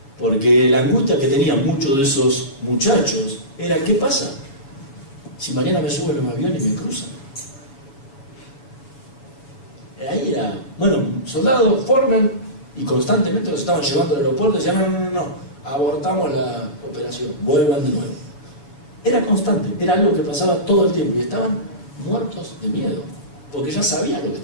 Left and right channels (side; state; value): right; late; 7.2 ms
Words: Porque la angustia que tenían muchos de esos muchachos era: ¿qué pasa si mañana me suben en un avión y me cruzan? Ahí era, bueno, soldados forman y constantemente los estaban llevando al aeropuerto y decían: no, abortamos la operación, vuelvan de nuevo. Era constante, era algo que pasaba todo el tiempo y estaban muertos de miedo, porque ya sabían lo que